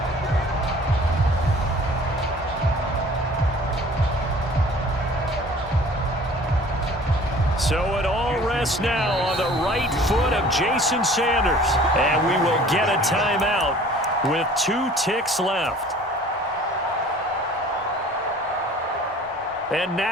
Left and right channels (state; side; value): normal; both; correlation 0.49